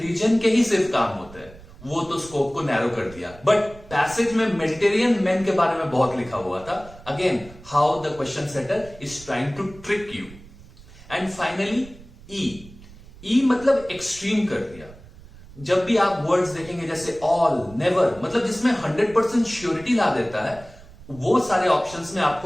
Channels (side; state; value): right; noise; rumble, 20 dB below the sound